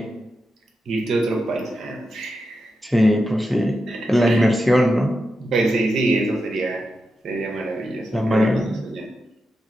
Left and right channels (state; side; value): normal; both; correlation 0.88